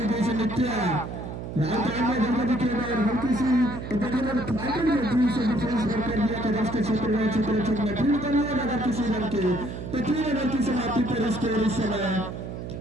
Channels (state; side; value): noise; right; hum, 8 dB below the sound